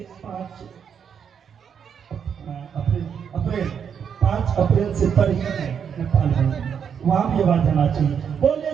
5 अप्रैल से तारीख में नेपाल में, वहां भी आवाज जाना चाहिए। बोले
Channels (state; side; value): quieter; left; 7.5 dB